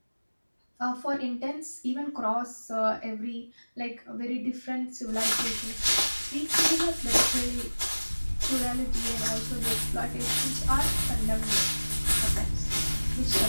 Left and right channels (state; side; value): inverted; both; correlation -1.00